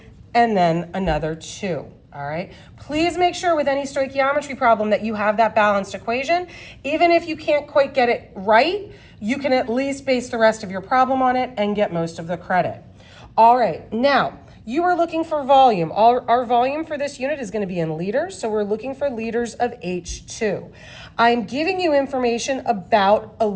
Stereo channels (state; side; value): identical; both; correlation 1.00